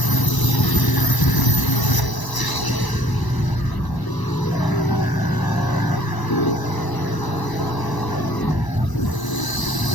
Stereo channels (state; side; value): late; right; 1.0 ms